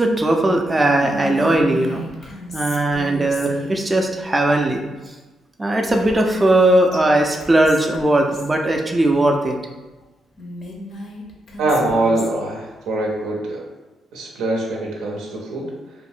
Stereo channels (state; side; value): normal; both; correlation 0.84